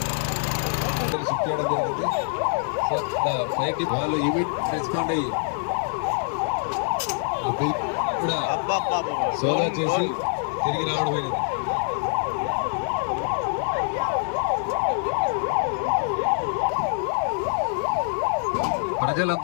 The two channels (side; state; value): right; silent; digital silence